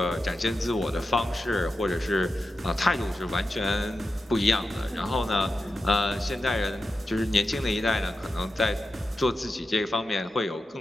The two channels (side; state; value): both; normal; correlation 0.90